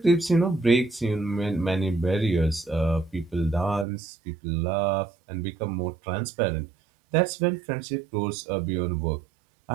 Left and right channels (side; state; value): left; drops out; at 3.9 s